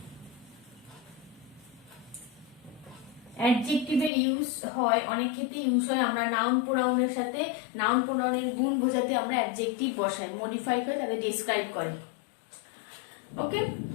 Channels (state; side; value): drops out; right; at 4.1 s